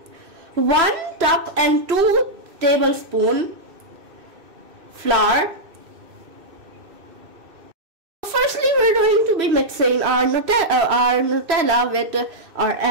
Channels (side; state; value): left; late; 2.6 ms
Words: 1 cup and 2 tablespoons flour. Firstly, we're going to be mixing our Nutella with our